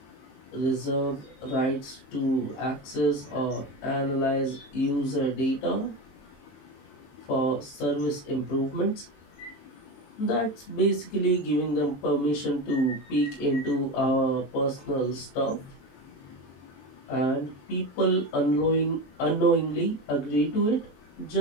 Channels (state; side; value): late; right; 23 ms